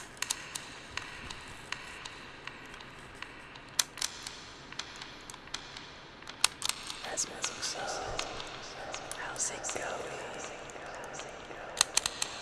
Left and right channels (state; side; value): identical; both; correlation 1.00